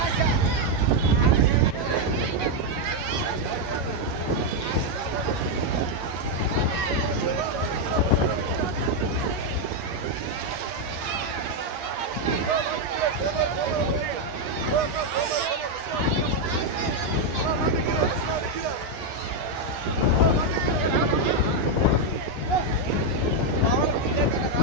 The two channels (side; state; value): left; late; 9.2 ms